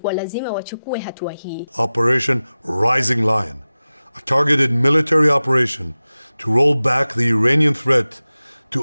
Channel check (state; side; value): inverted; both; correlation -0.97